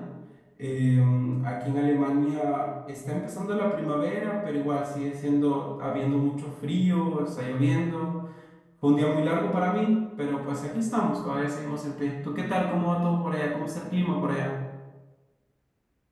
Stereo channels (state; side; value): identical; both; correlation 1.00